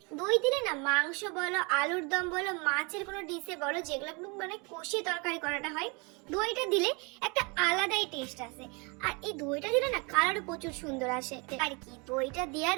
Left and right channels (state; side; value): quieter; left; 30.2 dB